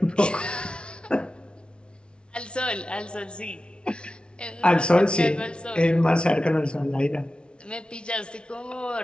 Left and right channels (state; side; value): late; right; 0.057 ms